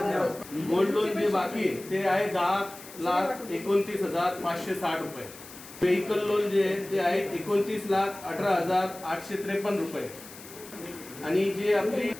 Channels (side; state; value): left; noise; hiss, 17 dB below the sound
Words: गोल्ड लोन जे बाकी आहे ते आहे 10,29,560 रुपये। व्हेकल लोन जे आहे ते आहे 29,18,853 रुपये आणि जे आपली